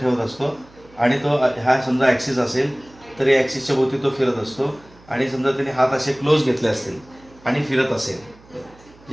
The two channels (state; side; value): noise; right; hum, 26 dB below the sound